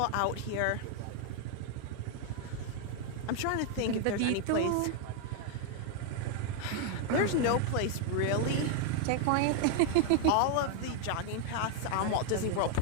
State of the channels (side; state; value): both; different; correlation 0.00